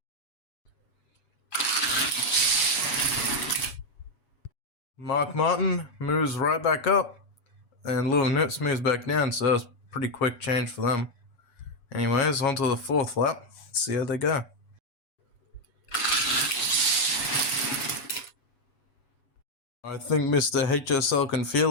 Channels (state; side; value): late; right; 8.2 ms